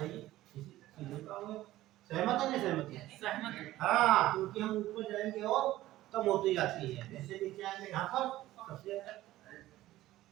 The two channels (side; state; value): left; quieter; 15.5 dB